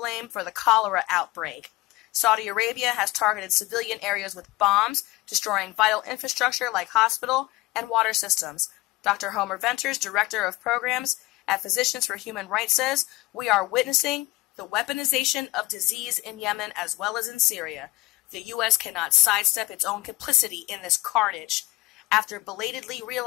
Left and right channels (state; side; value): quieter; right; 20.6 dB